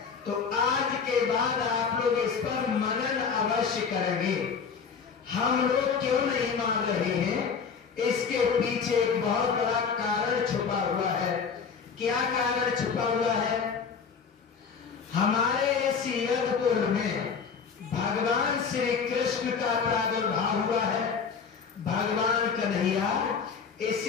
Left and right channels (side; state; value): right; quieter; 6.0 dB